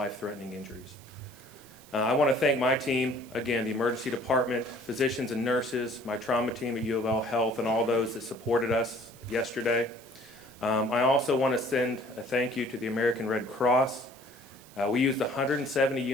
injuries. I want to thank my team, again, the emergency department, physicians and nurses, my trauma team at UofL Health, and all those that supported us yesterday. I also want to send a thank you to the American Red Cross. We used 170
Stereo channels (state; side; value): noise; right; hiss, 23 dB below the sound